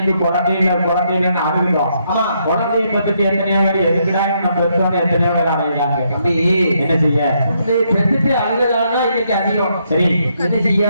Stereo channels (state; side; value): inverted; both; correlation -0.75